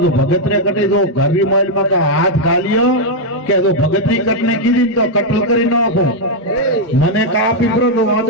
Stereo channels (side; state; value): both; normal; correlation -0.01